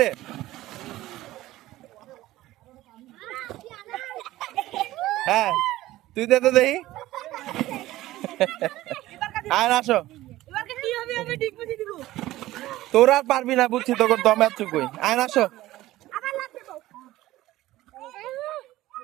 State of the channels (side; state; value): left; quieter; 16.2 dB